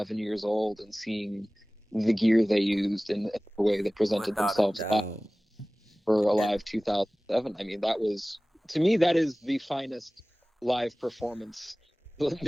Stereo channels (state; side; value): normal; both; correlation 0.98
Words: years old and seeing the gear they used and the way they presented Without a themselves doubt. for Alive 2007. I mean, to me, that is the finest live performance